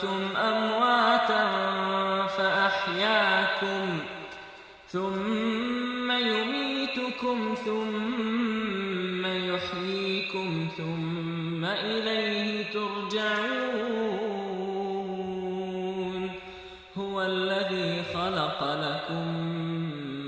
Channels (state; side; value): identical; both; correlation 1.00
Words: أمواتا فأحياكم ثم يميتكم ثم يحييكم ثم إليه ترجعون هو الذي خلق لكم